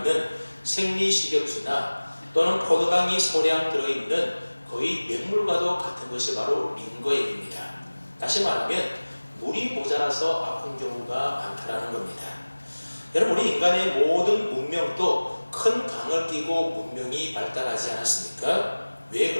생리식염수나 또는 포도당이 소량 들어있는 거의 맹물과도 같은 것이 바로 링거액입니다. 다시 말하면 물이 모자라서 아픈 경우가 많다는 겁니다. 여러분, 우리 인간의 모든 문명도 큰 강을 끼고 문명이 발달하지 않았습니까? 왜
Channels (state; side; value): inverted; both; correlation -1.00